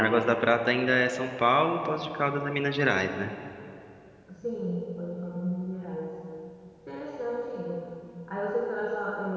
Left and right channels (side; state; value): both; identical; correlation 1.00